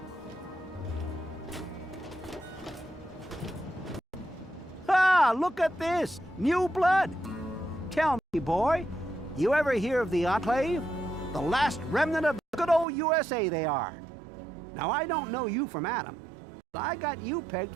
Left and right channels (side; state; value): left; drops out; at 12.9 s